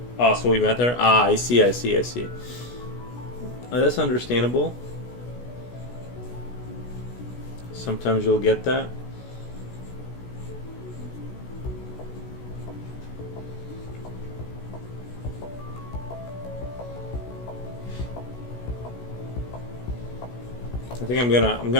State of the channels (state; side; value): late; right; 16 ms